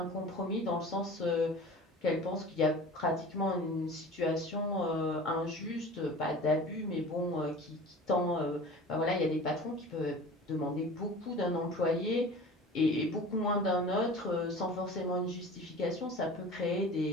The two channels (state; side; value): normal; both; correlation 0.40